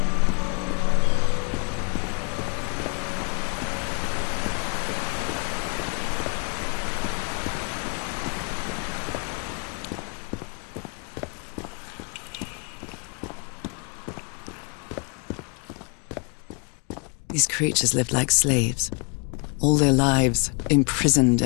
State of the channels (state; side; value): quieter; right; 35.7 dB